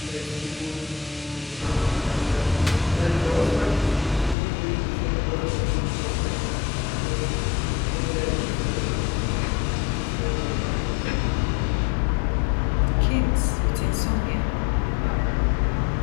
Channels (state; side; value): drops out; right; at 4.4 s